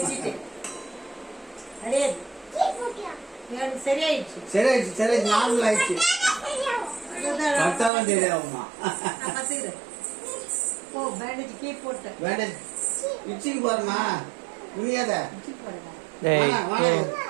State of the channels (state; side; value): drops out; left; at 7.9 s